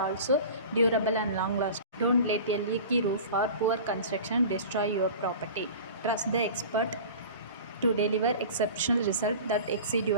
durable and long lasting. Don't let a leaky roof or poor construction destroy your property. Trust the expert to deliver exceptional results that exceed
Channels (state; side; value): inverted; both; correlation -0.37